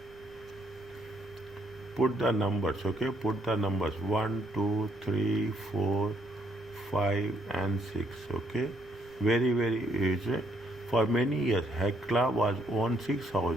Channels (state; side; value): noise; right; rumble, 26 dB below the sound